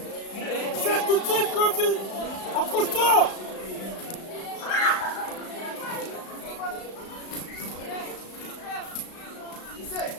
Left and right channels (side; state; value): right; late; 35 ms